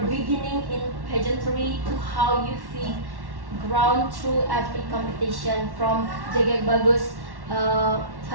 beginning in pageantry to how you feel ground through every competition from Jegek Bagus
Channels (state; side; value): late; left; 1.1 ms